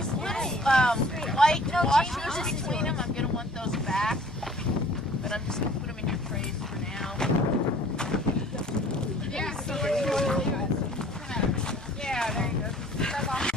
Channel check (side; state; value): both; normal; correlation 0.51